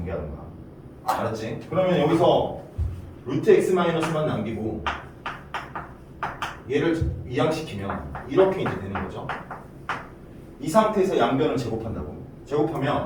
거야. 알았지? 그러면 여기서 루트 x-만 남기고 얘를 이항시키면 이렇게 이제 되는 거죠. 이 상태에서 양변을 제곱한다고.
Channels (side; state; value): both; identical; correlation 1.00